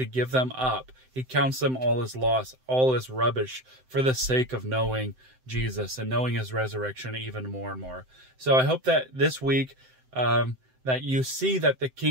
give them up. He counts them all as loss, all as rubbish for the sake of knowing Jesus and knowing his resurrection even more and more. So I hope that this week, that you see that the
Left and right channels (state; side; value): late; left; 7.8 ms